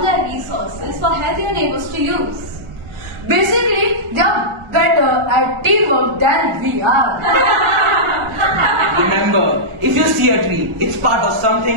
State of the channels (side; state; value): left; late; 1.5 ms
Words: their resources for healthier neighbors to use. Basically, they are better at teamwork than we are. Remember, if you see a tree, it's part of